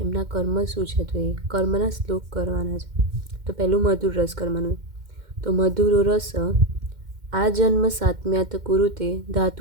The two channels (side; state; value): left; late; 2.1 ms